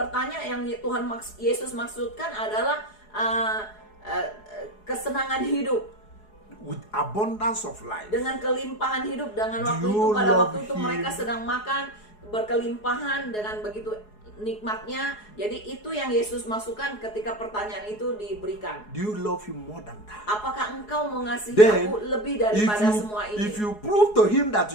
yang Yesus maksudkan adalah kesenangan hidup, With abundance of life. dengan kelimpahan hidup. Dengan waktu Do itu, you pada love waktu itu him? mereka sedang makan berkelimpahan dengan begitu nikmatnya. Jadi itu yang Yesus masukkan ketika pertanyaan itu diberikan. Do you love him more than that? Apakah engkau mengasihi Then, aku lebih daripada semua ini? if you prove to him that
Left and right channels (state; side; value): late; right; 4.8 ms